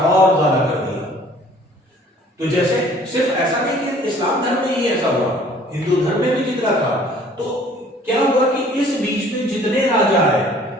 और ज्यादा कर दिया। तो जैसे सिर्फ ऐसा नहीं कि इस्लाम धर्म में ही ऐसा हुआ, हिंदू धर्म में भी जितना था। तो क्या हुआ कि इस बीच में जितने राजा आए,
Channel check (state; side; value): normal; both; correlation 0.54